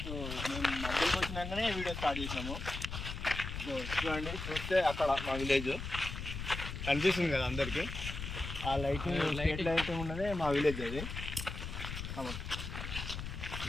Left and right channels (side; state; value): left; noise; rumble, 6 dB below the sound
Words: మేము మధ్యలోకి వచ్చినాకనే వీడియో స్టార్ట్ చేసినాము. చూడండి, చూస్తే అక్కడ మా విలేజ్ కనిపిస్తుంది కదా అందరికీ. ఆ లైటింగ్ స్ట్రీట్ లైట్ ఉన్నదే మా విలేజ్. అది